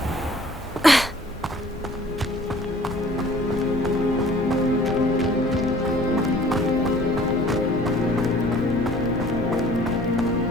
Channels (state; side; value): normal; both; correlation 0.52